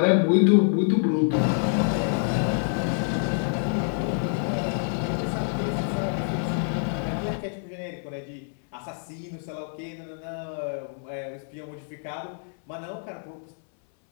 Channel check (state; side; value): silent; right; 60 dB below the other